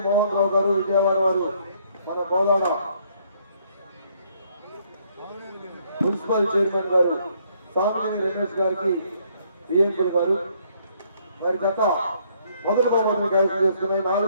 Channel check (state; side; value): inverted; both; correlation -0.67